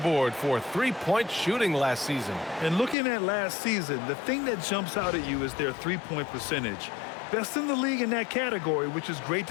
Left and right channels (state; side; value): drops out; right; at 3.0 s